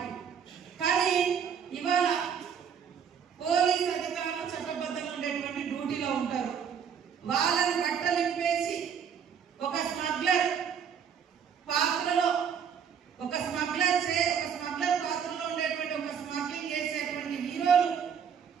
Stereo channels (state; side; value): quieter; left; 7.5 dB